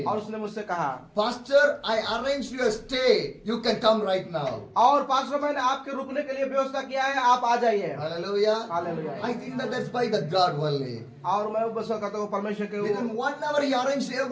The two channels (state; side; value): identical; both; correlation 1.00